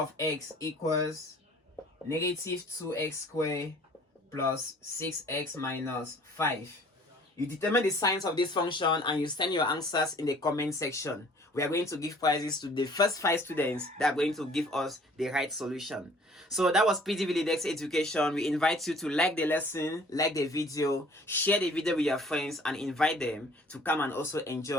x equals -2x squared plus 6x minus 5. You determine the signs of this function and you send your answers in the comment section. We are going to give prizes to the first 5 students that are going to give us the right solution. So that was PGV Lidex Education. We invite you to like the lesson, like the video, share the video with your friends, and invite them to come and also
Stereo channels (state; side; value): normal; both; correlation 0.53